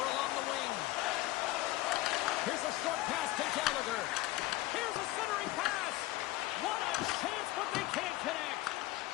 along the wing. Here's a short pass to Gallagher. Here's a centering pass. What a chance, but they can't connect.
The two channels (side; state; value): right; quieter; 17.7 dB